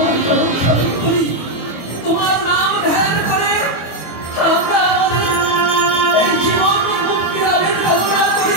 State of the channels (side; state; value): right; late; 25 ms